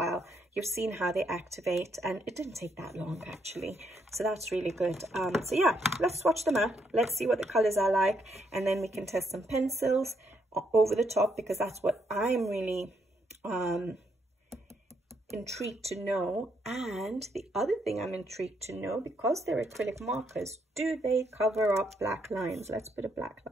You've seen how they activate, and it didn't take that long actually. So that's really good. So yeah, let's swatch them out. Let's see what the colors are like, and then we can test some pencils over the top, because that's what I'm really intrigued to know. And the other thing I'm intrigued to know, because they're acrylic markers, do they cover up black lines? Let's put a black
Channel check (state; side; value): normal; both; correlation 0.75